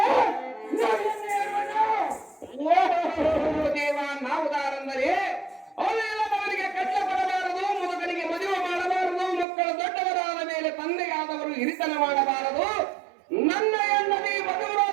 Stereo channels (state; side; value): drops out; left; at 9.5 s